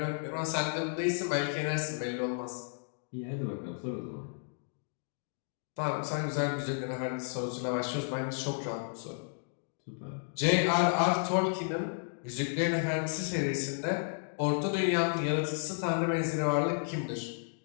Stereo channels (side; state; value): right; silent; digital silence